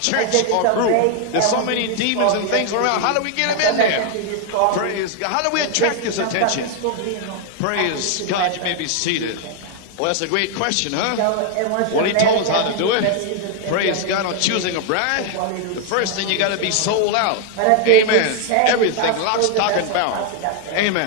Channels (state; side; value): different; both; correlation 0.00